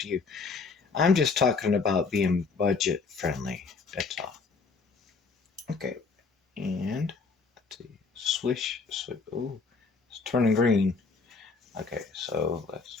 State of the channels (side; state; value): right; quieter; 4.6 dB